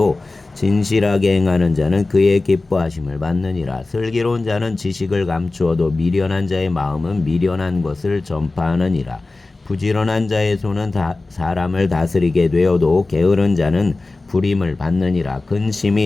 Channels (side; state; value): right; quieter; 3.3 dB